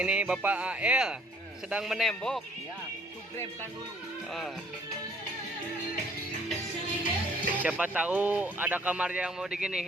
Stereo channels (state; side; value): normal; both; correlation 0.60